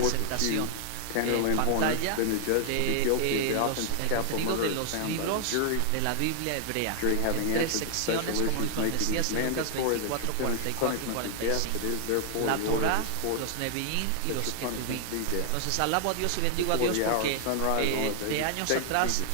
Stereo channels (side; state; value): both; different; correlation 0.00